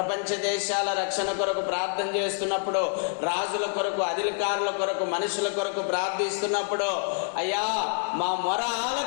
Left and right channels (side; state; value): right; silent; digital silence